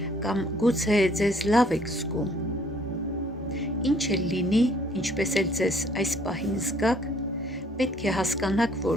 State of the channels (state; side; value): normal; both; correlation 0.61